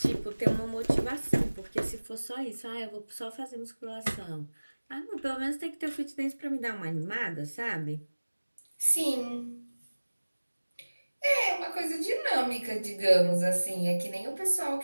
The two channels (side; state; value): both; inverted; correlation -1.00